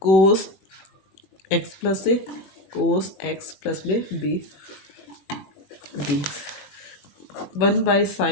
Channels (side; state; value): right; late; 21 ms